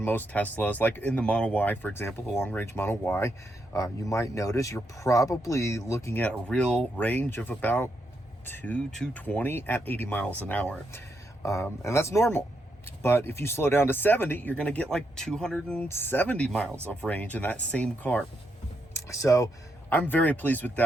most Teslas, like in the Model Y, for example, the long-range Model Y, you might notice you're probably looking at a real range of about 220 at 80 miles an hour. And that's normal. But if you slow down to 70, you're going to get like 270 miles of range in that same car. So I'm very pleased with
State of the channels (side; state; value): both; normal; correlation 0.81